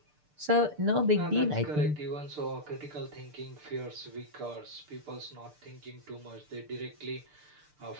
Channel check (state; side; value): late; left; 6.7 ms